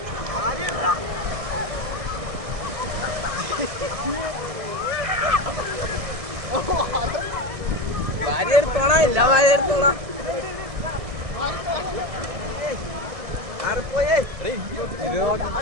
ഭാര്യ എടുത്തോളാം. ഇല്ല ഭാര്യ എടുത്തോളാം.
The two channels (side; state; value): left; late; 1.6 ms